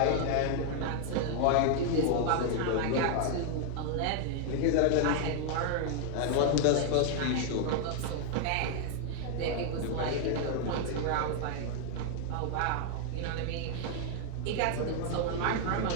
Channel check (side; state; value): both; different; correlation 0.00